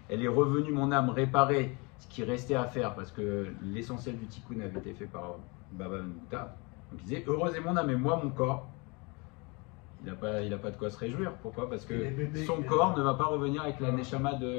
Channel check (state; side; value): quieter; right; 28.9 dB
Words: revenue, mon âme, réparer ce qui restait à faire, parce que l'essentiel du tikkun avait été fait par Baba Ben Bouta. Donc il disait heureuse est mon âme, et moi, mon corps, il n'a pas de quoi se réjouir. Pourquoi? Parce que son corps ne va pas revenir avec la neshama